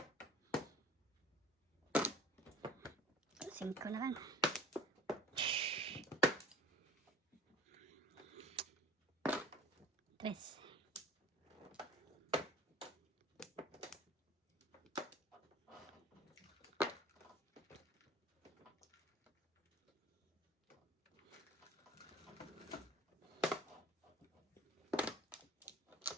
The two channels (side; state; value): both; normal; correlation 0.42